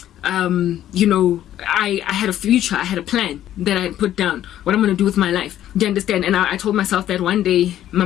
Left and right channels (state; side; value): quieter; right; 12.0 dB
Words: you know, I had a future, I had a plan that I put down, what I'm going to do with my life. Do you understand? And I told myself that one day my